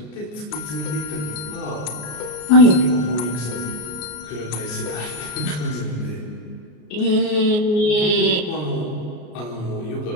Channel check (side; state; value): right; late; 33 ms